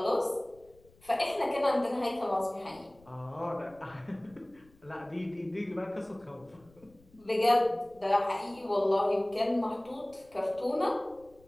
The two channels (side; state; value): left; noise; rumble, 28 dB below the sound